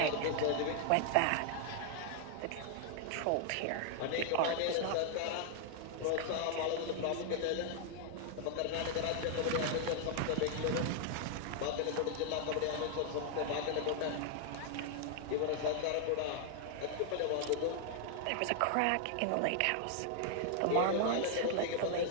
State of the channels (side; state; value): both; different; correlation 0.00